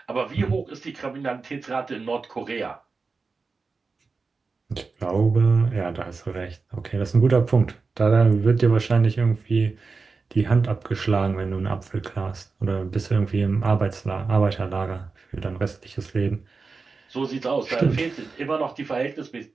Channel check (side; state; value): left; quieter; 4.4 dB